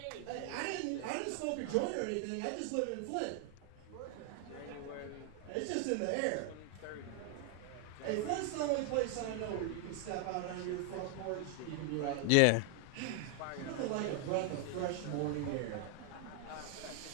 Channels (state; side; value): different; both; correlation 0.00